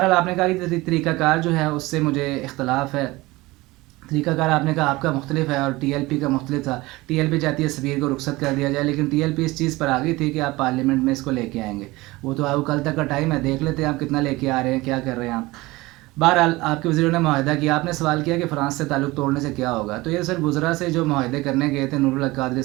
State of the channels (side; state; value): left; quieter; 20.6 dB